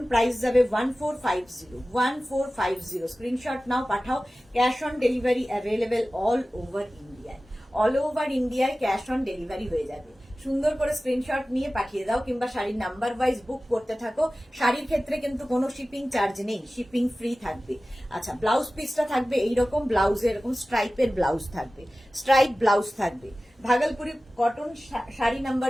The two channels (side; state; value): both; normal; correlation 0.96